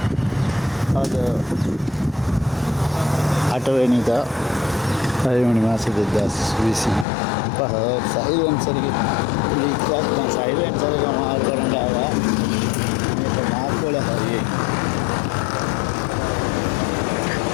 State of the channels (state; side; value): drops out; right; at 7.1 s